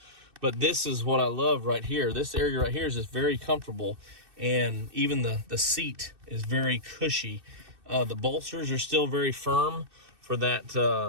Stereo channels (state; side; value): late; left; 2.6 ms